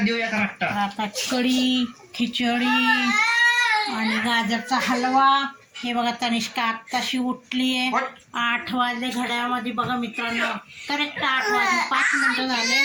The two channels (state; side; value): identical; both; correlation 1.00